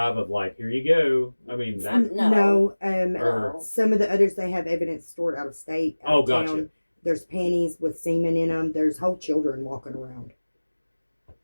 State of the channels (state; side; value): inverted; both; correlation -1.00